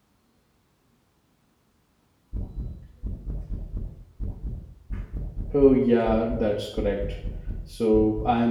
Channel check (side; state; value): both; identical; correlation 1.00